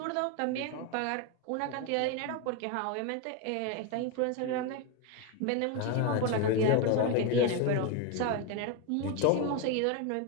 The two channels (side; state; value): both; different; correlation 0.02